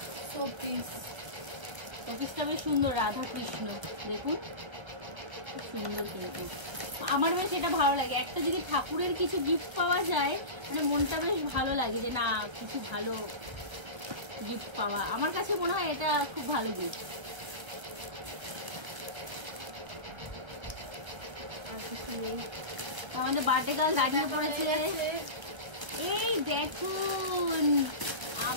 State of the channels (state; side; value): late; left; 1.5 ms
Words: শোপিস। শোপিসটা বেশ সুন্দর, রাধা কৃষ্ণ, দেখুন খুব সুন্দর। কিন্তু আমার বেশ এটা ভালো লাগে, একটা যদি ঠাকুরের কিছু গিফট পাওয়া যায়, মানে মনটা বেশ ভালো লাগে যে না কিছু ভালো গিফট পাওয়া। আমার কাছে মনে হয় এটা খুব ভালো গিফট। আমাদের বার্থডে গার্ল দাঁড়িয়ে পড়েছে। এই দেখুন